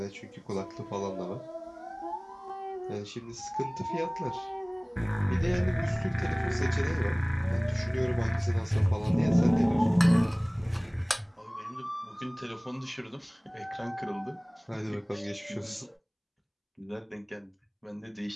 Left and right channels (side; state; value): both; identical; correlation 1.00